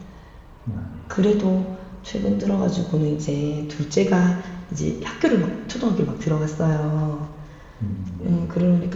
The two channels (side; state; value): both; identical; correlation 1.00